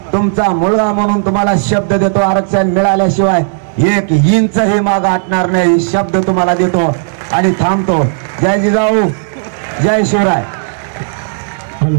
तुमचा मुलगा म्हणून तुम्हाला शब्द देतो, आरक्षण मिळाल्याशिवाय 1 इंच हे माग हटणार नाही. शब्द तुम्हाला देतो आणि थांबतो. जय जिजाऊ, जय शिवराय.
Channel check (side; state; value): left; silent; digital silence